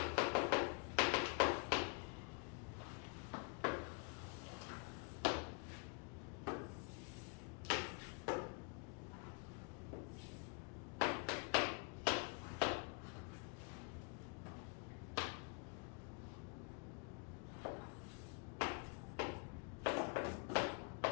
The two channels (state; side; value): quieter; right; 37.2 dB